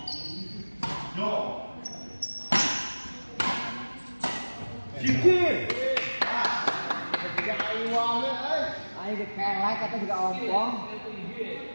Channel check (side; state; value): both; inverted; correlation -1.00